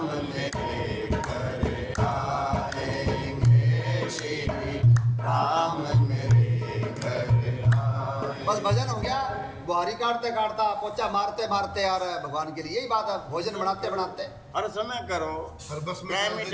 मेरे घर आएंगे, श्री राम मेरे घर आएंगे। बस भजन हो गया। बुहारी काटते काटता, पोचा मारते मारते आ रहा है भगवान के लिए। यही बात है, भोजन बनाते बनाते। हर समय करो, हर बस में टाइम ही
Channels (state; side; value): identical; both; correlation 1.00